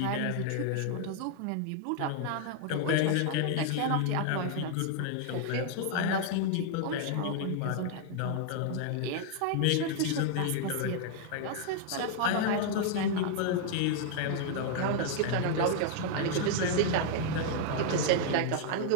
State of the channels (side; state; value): both; different; correlation -0.01